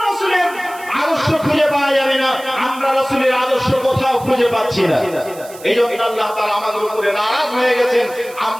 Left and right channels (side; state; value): right; noise; hiss, 19 dB below the sound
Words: রাসূলের আদর্শ খুঁজে পাওয়া যাবে না। আমরা রাসূলের আদর্শ কোথাও খুঁজে পাচ্ছি না। এই জন্য আল্লাহ তাআলা আমাদের উপরে নারাজ হয়ে গেছেন।